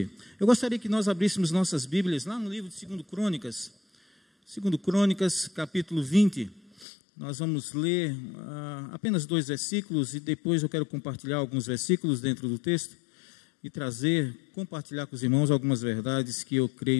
Eu gostaria que nós abríssemos nossas Bíblias lá no livro de 2 Crônicas, capítulo 20. Nós vamos ler apenas 2 versículos e depois eu quero compartilhar alguns versículos dentro do texto e compartilhar com os irmãos algumas verdades que eu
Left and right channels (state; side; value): drops out; right; at 6.9 s